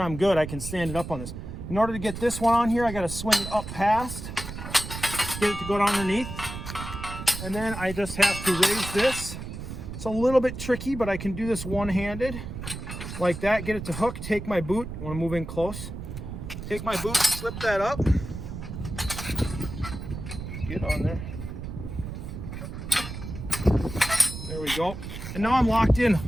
good. I can stand it up on this. In order to get this one on here, I got to swing it up past, get it to go down underneath, and then I just have to raise this. It's a little bit tricky, but I can do this one-handed like that. Get it to hook, take my boot. I want to move in close. Take my boot, slip that up, get on there. There we go. And now I'm locked in.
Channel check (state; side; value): noise; right; rumble, 8 dB below the sound